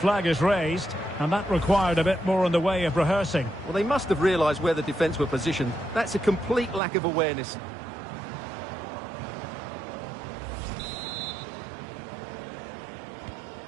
is raised, and that required a bit more in the way of rehearsing. Well, they must have realised where the defence were positioned. That's a complete lack of awareness.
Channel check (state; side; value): drops out; left; at 6.8 s